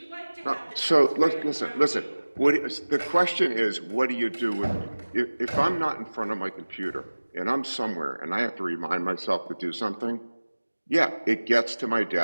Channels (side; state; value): both; inverted; correlation -1.00